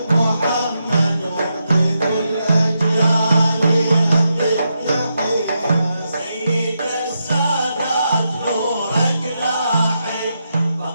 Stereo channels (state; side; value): inverted; both; correlation -0.84